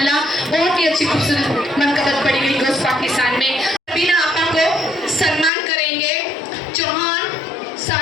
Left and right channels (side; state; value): right; drops out; at 5.5 s